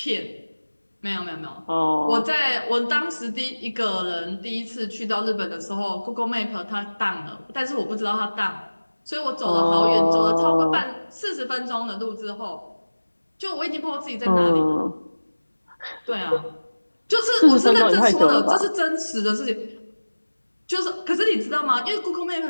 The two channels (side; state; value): both; inverted; correlation -1.00